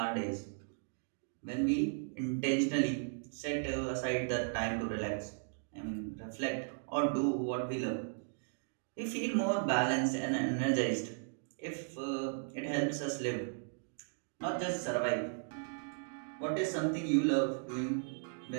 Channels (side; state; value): left; silent; digital silence